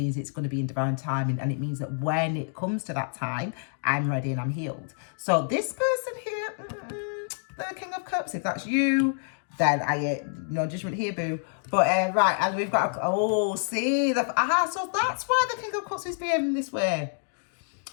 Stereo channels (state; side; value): silent; right; digital silence